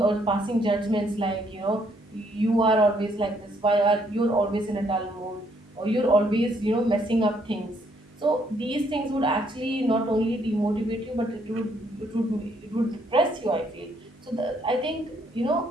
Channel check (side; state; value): both; normal; correlation 0.69